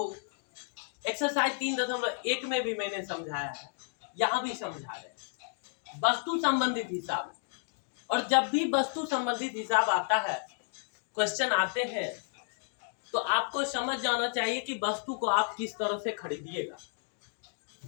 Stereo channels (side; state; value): right; silent; digital silence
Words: एक्सरसाइज 3.1 में भी मैंने समझाया है, यहां भी समझा रहे। वस्तु संबंधित हिसाब। और जब भी वस्तु संबंधित हिसाब आता है, क्वेश्चन आते हैं, तो आपको समझ जाना चाहिए कि वस्तु को आप किस तरह से खरीदिएगा।